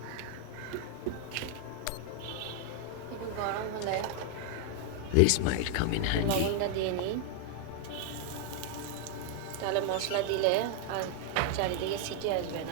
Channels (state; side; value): different; both; correlation 0.00